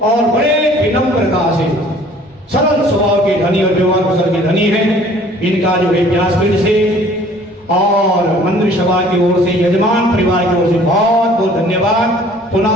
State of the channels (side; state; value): both; normal; correlation 0.53